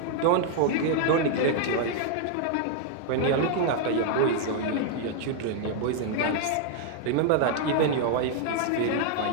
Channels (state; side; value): different; both; correlation 0.00